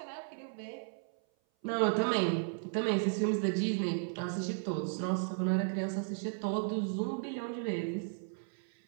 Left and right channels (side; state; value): left; silent; 55 dB below the other